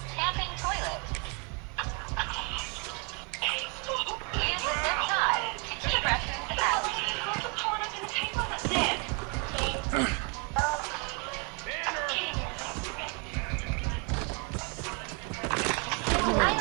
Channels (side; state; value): left; quieter; 34.7 dB